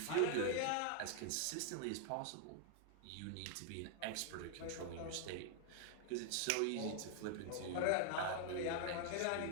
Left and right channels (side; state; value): both; different; correlation 0.00